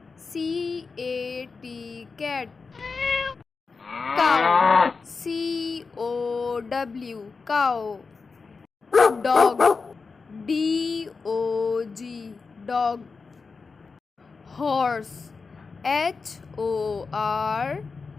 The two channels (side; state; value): right; quieter; 4.6 dB